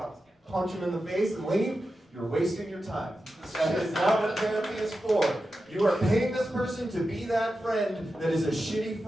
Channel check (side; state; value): both; normal; correlation 0.91